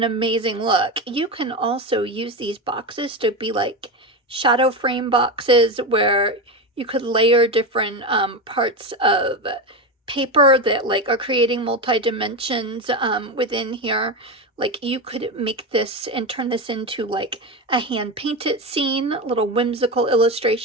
amazing look. You can also use these boxes to be like shadow frame boxes where you could layer different parts of paper that like are creating multi-dimensions within here. Like you could make this and turn this into like a hand-painted scene, a little whimsical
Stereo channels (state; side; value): normal; both; correlation 0.17